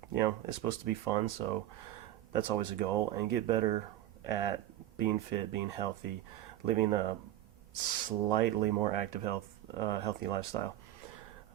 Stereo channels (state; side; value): quieter; left; 13.1 dB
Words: You know, it's supposed to be fun, so that's always a goal, and get better at being fit, being healthy, living a slightly more active, healthy lifestyle.